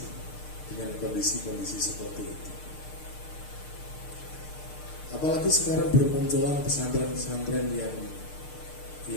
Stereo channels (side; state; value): right; late; 6.6 ms